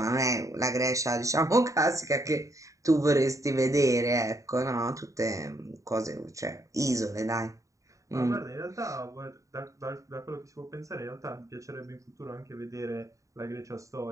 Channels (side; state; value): left; late; 0.16 ms